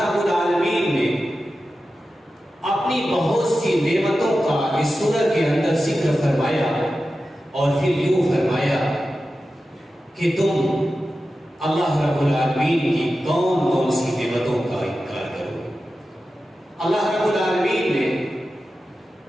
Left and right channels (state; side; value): normal; both; correlation 0.93